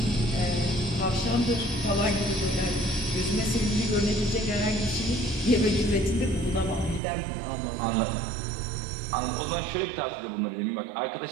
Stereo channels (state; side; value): drops out; left; at 7.0 s